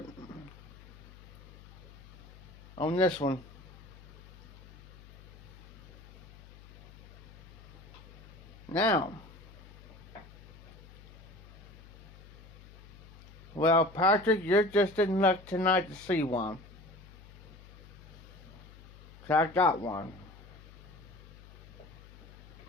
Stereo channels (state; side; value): noise; left; hum, 19 dB below the sound